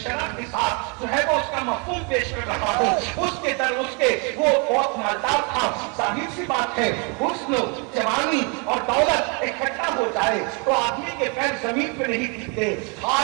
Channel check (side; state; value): left; quieter; 34.0 dB